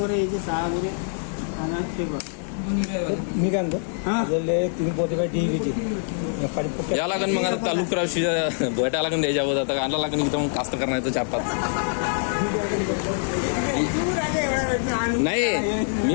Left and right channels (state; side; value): silent; right; 62 dB below the other